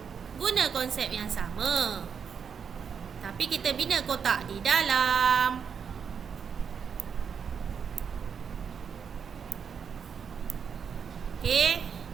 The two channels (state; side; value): quieter; left; 6.8 dB